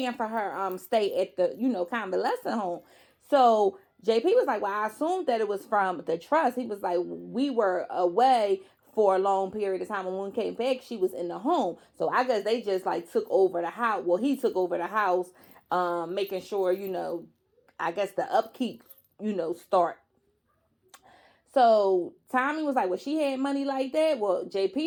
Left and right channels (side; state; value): both; identical; correlation 1.00